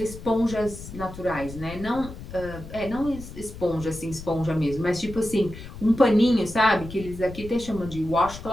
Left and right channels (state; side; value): noise; left; rumble, 13 dB below the sound